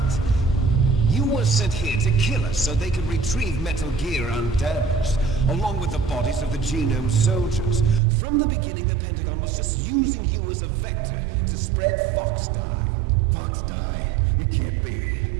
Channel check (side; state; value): left; drops out; at 8.0 s